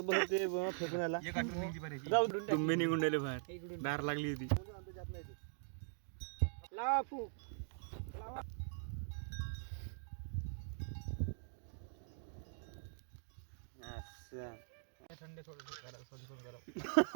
ते फेकून आला एक आठवण निघली पाहिजे जाऊ तुम्ही निघून राहिले बाहेर दार लागली होती लावा फूक थंड थोडं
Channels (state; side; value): silent; left; digital silence